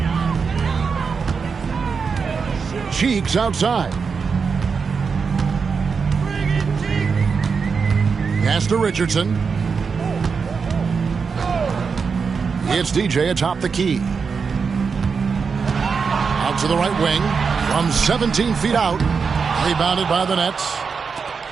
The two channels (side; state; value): left; quieter; 5.5 dB